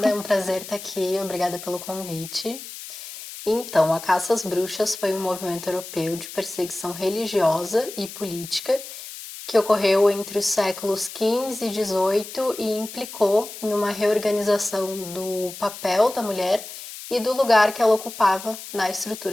é um prazer estar aqui, obrigada pelo convite. Então, a caça às bruxas foi um movimento europeu de perseguição religiosa e política que ocorreu entre os séculos XV e XVIII e implicou em uma reorganização do papel da mulher e do lugar que ela ocupava na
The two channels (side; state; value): left; noise; hiss, 12 dB below the sound